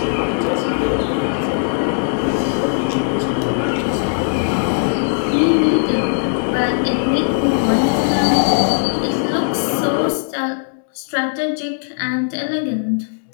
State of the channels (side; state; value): right; silent; digital silence